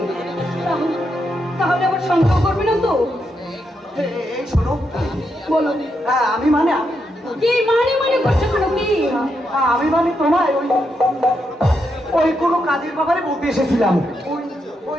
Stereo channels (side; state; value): both; normal; correlation 0.82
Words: তাহলে আবার সন্দেহ করবে না তো? এই শোনো, বলো। আমি মানে কি মানে করছো কেন? কি আমি মানে তোমায় ওই কোনো কাজের ব্যাপারে বলতে এসেছিলাম। ওই